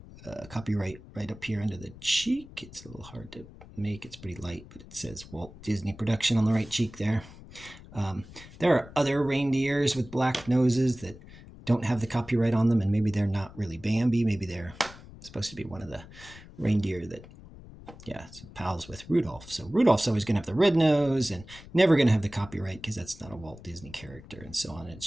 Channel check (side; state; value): left; noise; rumble, 18 dB below the sound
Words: copyright right up here under the cheek. It's a little hard to make. It's pretty light, but it says Walt Disney Production on the right cheek there. There are other reindeers with black noses that don't have the copyright on them, and maybe they're not really Bambi. Maybe they're supposed to be one of the reindeer that, it's pals with Rudolph. So Rudolph's always going to have the red nose and never going to have the copyright because that's not a Walt Disney character. And so on